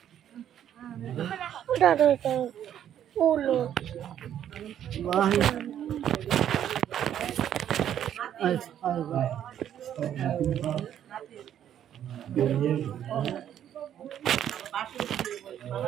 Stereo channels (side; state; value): left; quieter; 10.3 dB